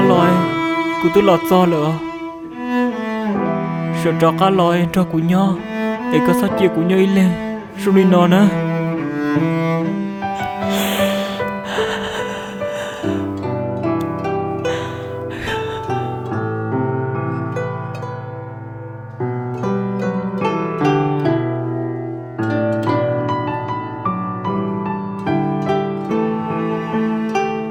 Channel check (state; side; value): identical; both; correlation 1.00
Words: lòi cô tôi lọt do rồi sợ trò cá lòi trò của nhau để có sao chia của nhau lên rồi đi nọ nữa